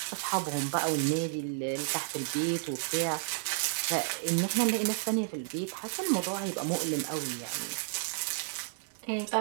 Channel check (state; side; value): silent; left; digital silence